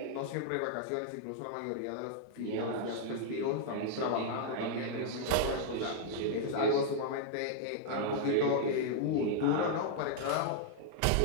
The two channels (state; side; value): different; both; correlation -0.01